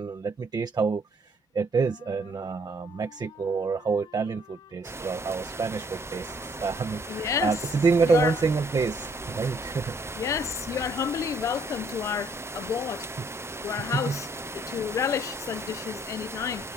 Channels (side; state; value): both; normal; correlation 0.65